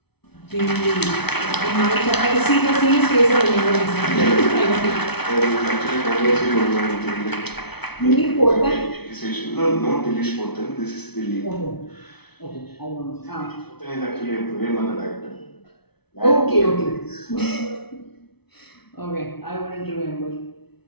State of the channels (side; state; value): right; late; 0.99 ms